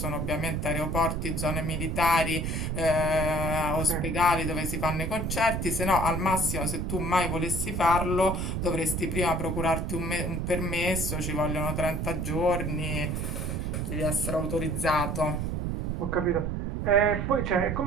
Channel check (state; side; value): noise; right; rumble, 1 dB below the sound